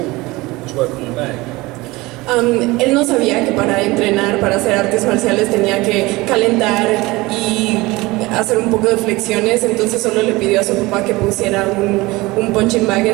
was work on the bag. Él no sabía que para entrenar, para hacer artes marciales tenía que calentar y hacer un poco de flexiones, entonces solo le pidió a su papá que pusiera un punching bag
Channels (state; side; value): quieter; left; 21.3 dB